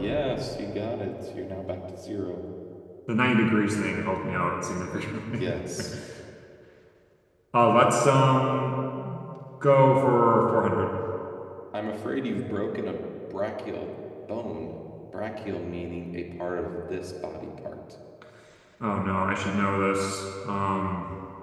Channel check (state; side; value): identical; both; correlation 1.00